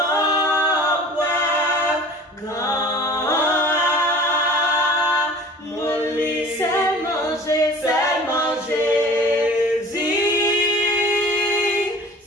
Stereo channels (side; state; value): both; normal; correlation 0.44